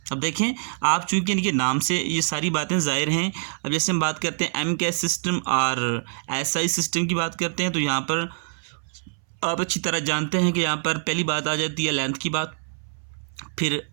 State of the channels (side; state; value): left; silent; 62 dB below the other